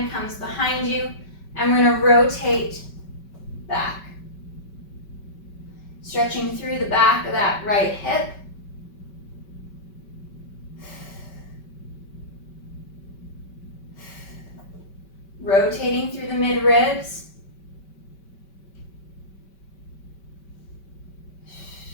comes behind you, and we're going to rotate back. Stretching through the back of that right hip. Rotating through the mid-ribs.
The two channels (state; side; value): late; right; 5.2 ms